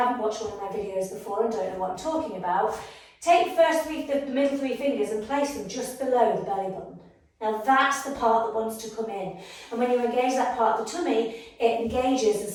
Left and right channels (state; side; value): identical; both; correlation 1.00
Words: watched one of my videos before and don't know what I'm talking about, take the middle three fingers and place them just below the belly button. Now, that's the part that wants to come in. And when you engage that part of the tummy, it